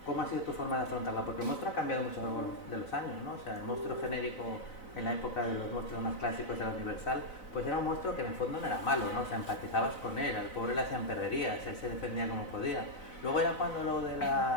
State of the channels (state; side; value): late; right; 4.0 ms